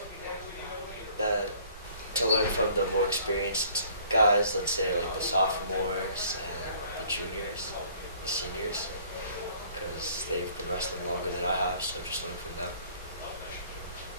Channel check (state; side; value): inverted; both; correlation -0.56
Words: That to learn from the more experienced guys, let's say the sophomores and the juniors, the seniors, because they've been wrestling longer than I have, so just learn from them.